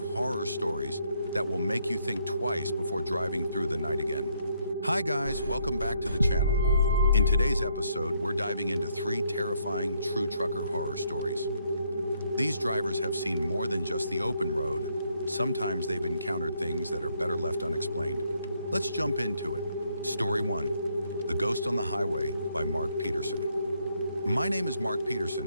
stories that will make you think twice before driving through the night again. Hi guys, welcome back to the channel. In today's episode, we're diving into 3 terrifying true trucker horror stories. These drivers have seen more than just the open road. Sometimes they've encountered things that are better left unexplained. Let's jump into it. Story 1, The Ghost on the Highway by Mark Peterson. My name is Mark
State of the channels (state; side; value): inverted; both; correlation -0.72